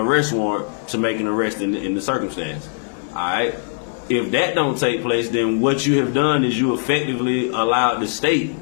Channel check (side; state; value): right; silent; 65 dB below the other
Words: warrant to make an arrest in the circumstance. All right. If that don't take place, then what you have done is you effectively allowed the state